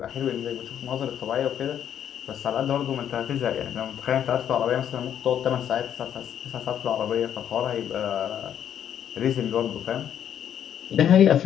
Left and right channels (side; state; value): right; quieter; 9.6 dB